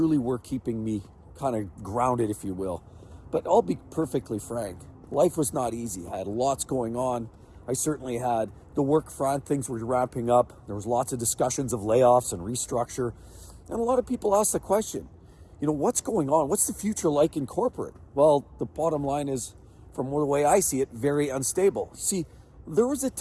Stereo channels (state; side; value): identical; both; correlation 1.00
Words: were keeping me kind of grounded, if you will. But I'll be perfectly frank, life was not easy. I had lots going on. I certainly had the work front, things were ramping up. There was lots of discussions of layoffs and restructure. And a lot of people asked the question, what's going on? What's the future like in corporate? Well, the bottom line is, from the way I see it, very unstable. See, there was a